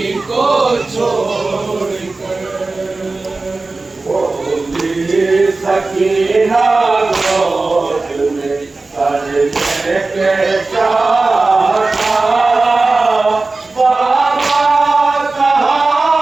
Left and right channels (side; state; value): left; quieter; 3.5 dB